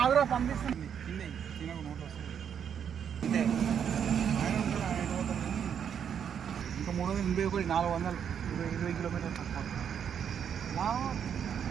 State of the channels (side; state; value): left; quieter; 8.1 dB